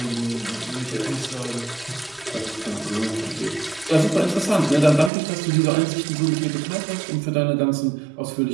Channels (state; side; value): drops out; left; at 5.1 s